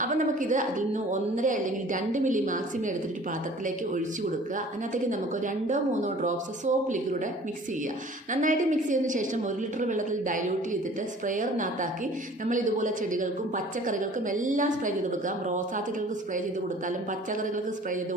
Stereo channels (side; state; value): both; normal; correlation 0.49